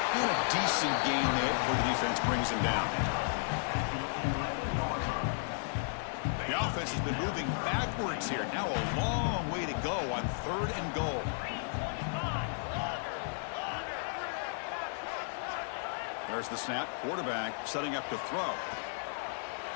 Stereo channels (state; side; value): silent; right; 55 dB below the other